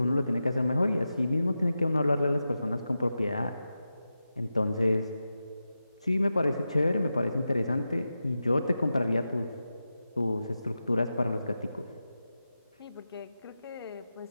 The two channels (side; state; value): both; inverted; correlation -0.91